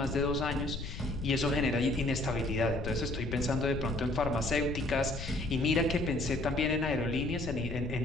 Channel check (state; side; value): noise; left; rumble, 7 dB below the sound